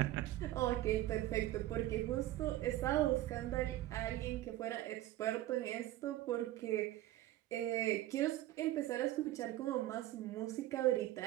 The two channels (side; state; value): left; quieter; 15.1 dB